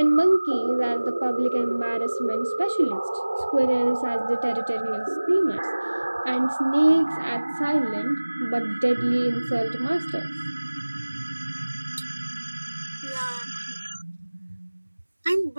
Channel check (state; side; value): inverted; both; correlation -1.00